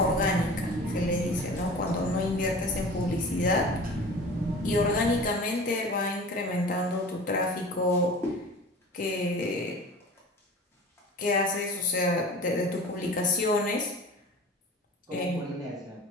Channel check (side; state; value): both; normal; correlation 0.39